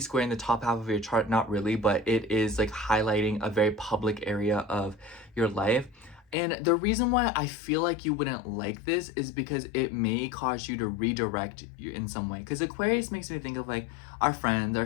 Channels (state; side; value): drops out; right; at 6.4 s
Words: in the top half of your chart. Not really, but it is like highlighting a very public area of your life. And the reason why I feel like you wouldn't like this is because it may cause you to redirect you in some way. Because Aquarius makes me think of like our friends, our